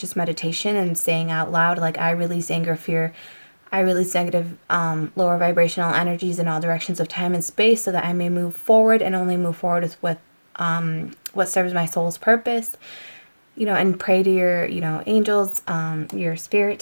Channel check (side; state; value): both; inverted; correlation -1.00